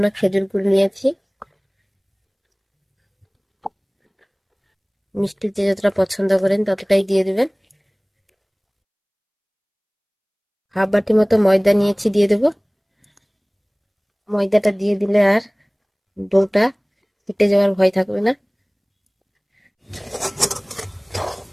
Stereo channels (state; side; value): identical; both; correlation 1.00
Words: খেজুর গুড় নিয়েছি। মিষ্টি যে যতটা পছন্দ করেন ততটাই দিয়ে দেবেন। 1/2 বাটি মতো ময়দা নিয়েছি, দিয়ে দেব। ময়দাটা দিয়ে দিলে আর ডোটা ফেটে যাওয়ার ভয় থাকবে না।